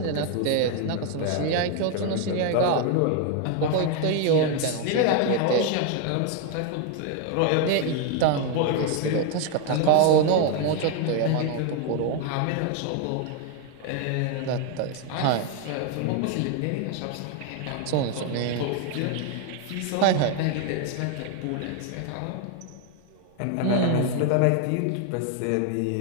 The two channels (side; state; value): both; different; correlation 0.01